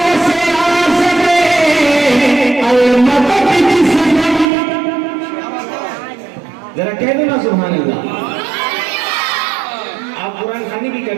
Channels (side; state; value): left; drops out; at 4.5 s